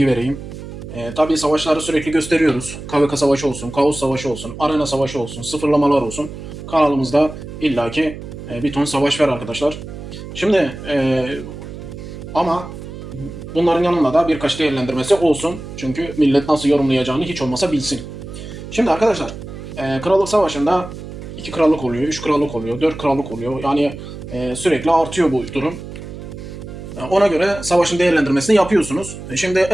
vereyim. Tabii savaşları sürekli gösteriyoruz. KVK savaşı olsun, Kaos savaşı olsun, Arena savaşı olsun, sıfırlamalar olsun. Kanalımızda illaki bir ton savaş var arkadaşlar. Şimdi ama bunların yanında da birkaç değerlendirmesi olsun. Çünkü millet nasıl yorumlayacağını hiç olmasa bilsin. Şimdi arkadaşlar, Krallık Savaşı'nda 2 krallık oluyor, 3 krallık oluyor, 4 krallık oluyor. Yani sürekli artıyor bu durum. Ona göre savaşın değerlendirmesini yapıyorsunuz. Şimdi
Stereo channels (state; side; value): noise; right; hum, 11 dB below the sound